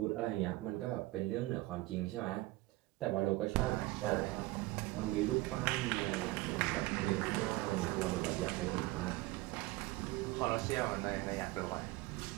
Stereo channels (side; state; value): left; quieter; 20.0 dB